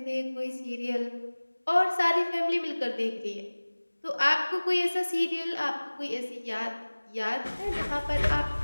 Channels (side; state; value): both; inverted; correlation -1.00